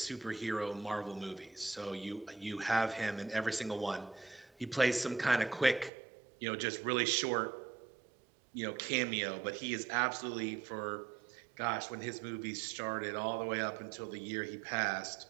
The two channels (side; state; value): left; drops out; at 5.9 s